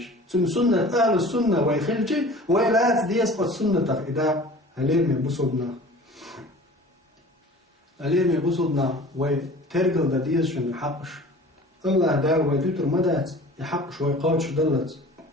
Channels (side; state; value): both; normal; correlation 0.43